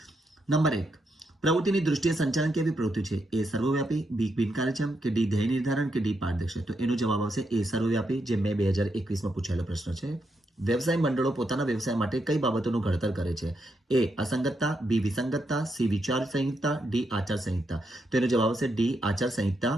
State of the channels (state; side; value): normal; both; correlation 0.81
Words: નંબર 1, પ્રવૃત્તિની દૃષ્ટિએ સંચાલન કેવી પ્રવૃત્તિ છે? એ સર્વવ્યાપી, બી બિનકાર્યક્ષમ કે ડી ધ્યેય નિર્ધારણ કે ડી પારદર્શક? તો એનો જવાબ આવશે એ સર્વવ્યાપી, જે મે 2021માં પૂછાયેલો પ્રશ્ન છે. વ્યવસાય મંડળો પોતાના વ્યવસાય માટે કઈ બાબતોનું ઘડતર કરે છે? એ અસંગતતા, બી વિસંગતતા, સી વિચાર સંહિતા, ડી આચાર સંહિતા? તો એનો જવાબ આવશે ડી આચાર સંહિતા.